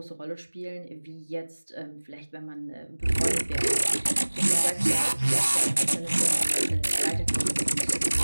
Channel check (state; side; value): inverted; both; correlation -1.00